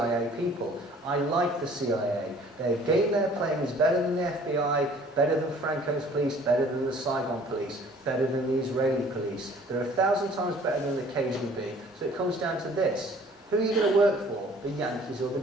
people. I like the CIA. Their game they're playing is better than the FBI, better than Franco's police, better than the Saigon police, better than the Israeli police. They're 1,000 times better than the KGB. So it comes down to this. Who are you going to work for? The Yankees or the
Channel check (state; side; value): normal; both; correlation 0.53